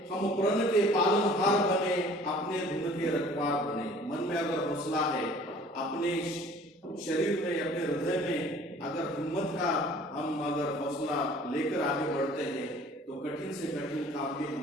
हम प्रण के पालनहार बने, अपने धुन के रखवार बने। मन में अगर हौसला है, अपने शरीर में, अपने हृदय में अगर हिम्मत का हम अगर हौसला लेकर आगे बढ़ते हैं तो कठिन से कठिन काम भी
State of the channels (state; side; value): normal; both; correlation 0.50